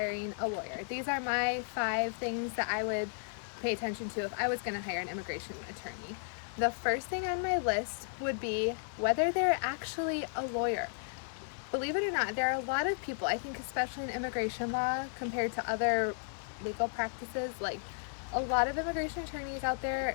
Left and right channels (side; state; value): right; silent; digital silence